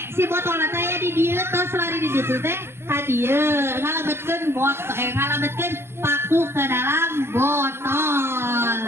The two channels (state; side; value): late; left; 0.12 ms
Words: si botol saya di dia terus lari di situ teh hadiah ngalabetkeun ngalabetkeun paku ke dalam